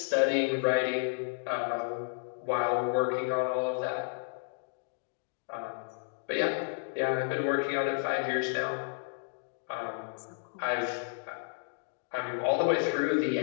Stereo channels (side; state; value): right; silent; digital silence